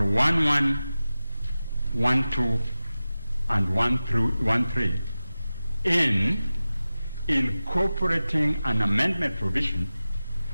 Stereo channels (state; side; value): inverted; both; correlation -0.95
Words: 12, and 13 in incorporating an amendment provision